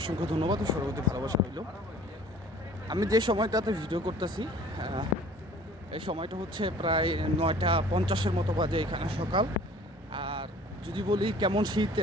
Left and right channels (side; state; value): both; normal; correlation 0.50